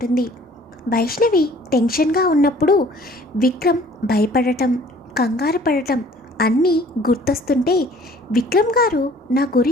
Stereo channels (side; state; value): both; normal; correlation 0.54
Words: వైష్ణవి టెన్షన్గా ఉన్నప్పుడు విక్రమ్ భయపడటం, కంగారు పడటం అన్నీ గుర్తొస్తుంటే విక్రమ్ గారు నా